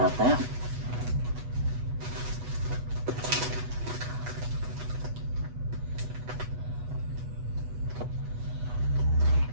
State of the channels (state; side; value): late; left; 8.2 ms